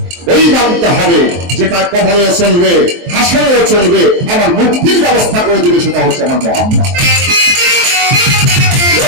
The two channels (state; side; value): late; left; 23 ms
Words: ওই নামটা হবে যেটা কবরে চলবে, হাসরেও চলবে, আমার মুক্তির ব্যবস্থা করে দিবে, সেটা হচ্ছে আমার মোহাম্মদ।